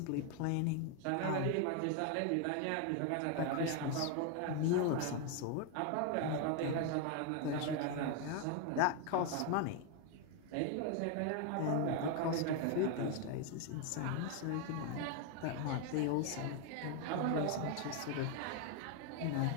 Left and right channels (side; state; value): both; different; correlation 0.01